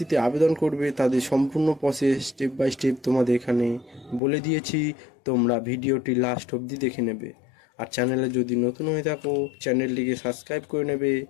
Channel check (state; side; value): drops out; right; at 4.2 s